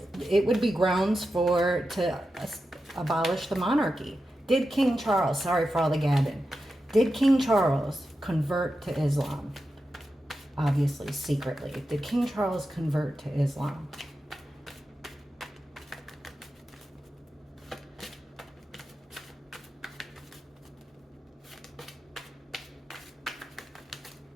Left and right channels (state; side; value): normal; both; correlation 0.90